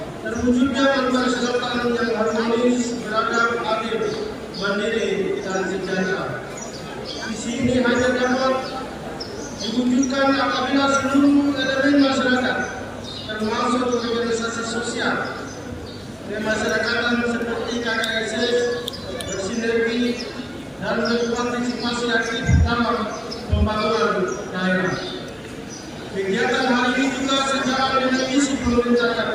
terwujudnya Manokwari Selatan yang harmonis, beradab, adil, mandiri, dan sejahtera. Visi ini hanya dapat diwujudkan apabila seluruh elemen masyarakat, termasuk organisasi sosial kemasyarakatan seperti KKSS, bersinergi dan berpartisipasi aktif dalam pembangunan daerah. Kegiatan hari ini juga sejalan dengan misi pemerintah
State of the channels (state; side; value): identical; both; correlation 1.00